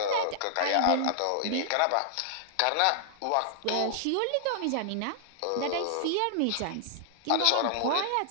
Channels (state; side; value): different; both; correlation -0.01